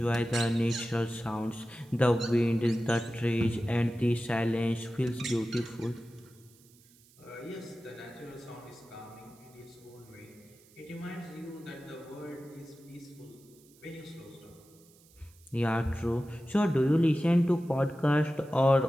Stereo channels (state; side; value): noise; right; hiss, 28 dB below the sound